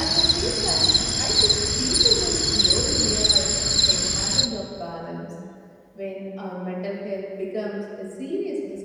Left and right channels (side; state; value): both; identical; correlation 1.00